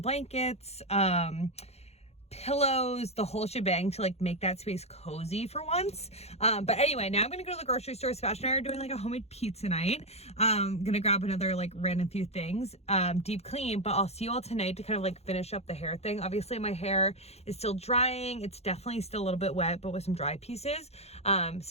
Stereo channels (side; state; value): right; late; 0.31 ms